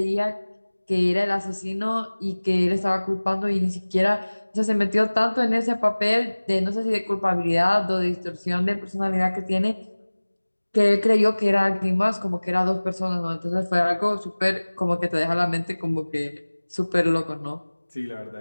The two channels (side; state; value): both; inverted; correlation -1.00